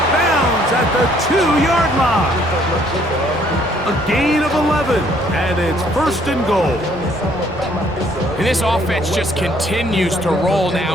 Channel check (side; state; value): both; normal; correlation 0.64